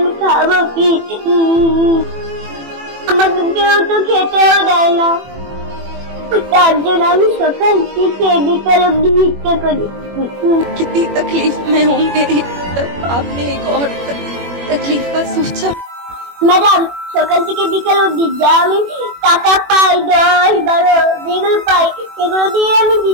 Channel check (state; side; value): late; left; 21 ms